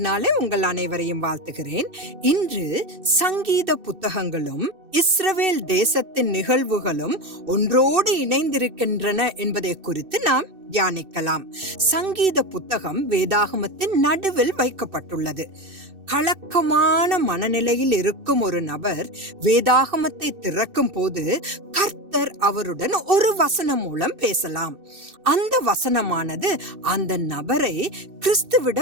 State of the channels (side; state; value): left; late; 2.6 ms